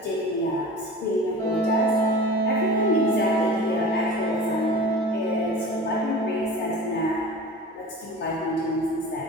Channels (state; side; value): normal; both; correlation 0.36